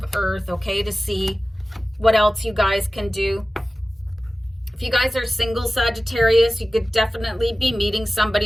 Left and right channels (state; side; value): normal; both; correlation 0.96